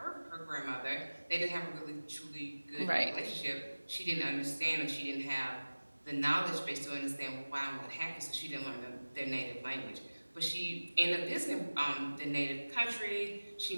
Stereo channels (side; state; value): both; inverted; correlation -1.00